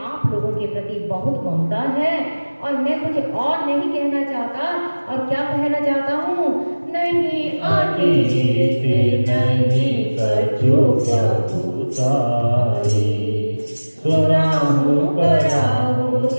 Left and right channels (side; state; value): both; inverted; correlation -1.00